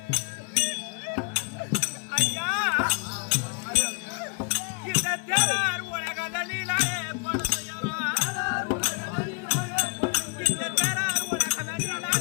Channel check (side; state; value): right; quieter; 33.2 dB